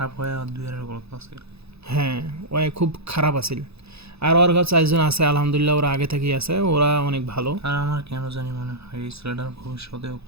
হয়ে আর দুই এর গল্প আছে। হ্যাঁ ওই খুব খারাপ আছিল। আর ওর কাছে 4 জন আছে আলহামদুলিল্লাহ, ওরা আগে থেকেই আছে, ওরা অনেক ভালো। আর আমার কেন জানি মনে হয় এই ছেলেটার ভবিষ্যতেও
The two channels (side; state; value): left; late; 0.79 ms